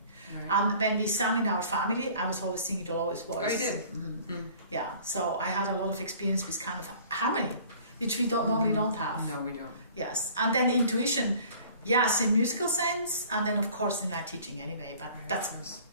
Right. And when we sang in our family, I was always singing the lowest voice. Oh, you did? Yeah. So I had a lot of experience with kind of harmony, which we normally don't have. No, we don't. Yes. And then intuition, yes, in musical sense, and then of course in my teaching anyway. But that's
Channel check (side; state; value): both; inverted; correlation -0.50